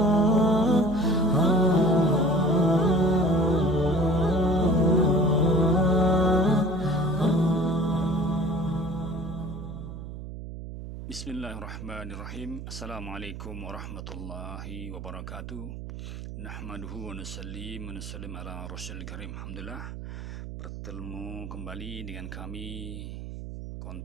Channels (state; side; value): noise; right; hum, 10 dB below the sound